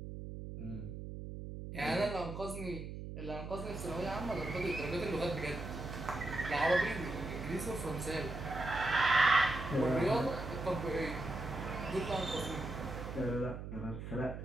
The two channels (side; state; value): right; noise; hum, 8 dB below the sound